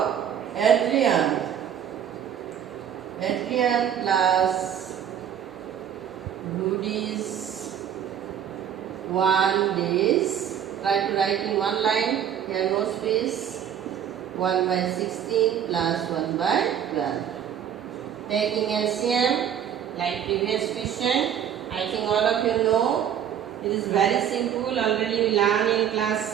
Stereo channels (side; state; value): left; quieter; 9.2 dB